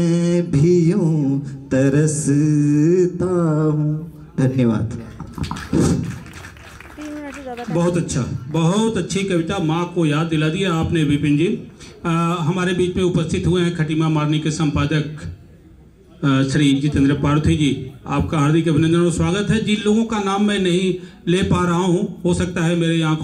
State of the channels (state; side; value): identical; both; correlation 1.00